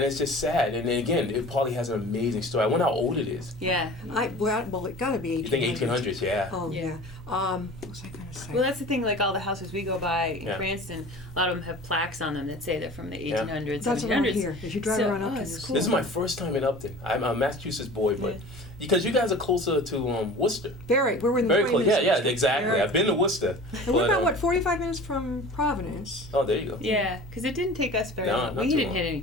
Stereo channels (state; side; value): normal; both; correlation 0.40